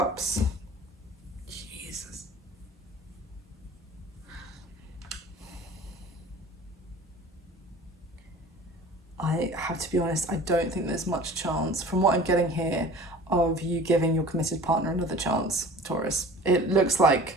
Jesus. I have to be honest, I don't think there's much chance, from what I'm getting here, of you giving your committed partner another chance, Taurus. It looks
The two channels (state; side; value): normal; both; correlation 0.44